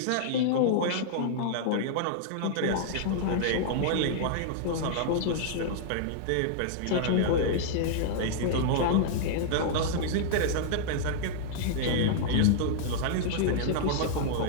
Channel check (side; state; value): both; different; correlation -0.01